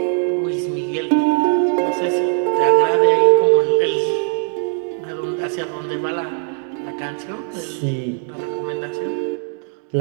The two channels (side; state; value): left; silent; 63 dB below the other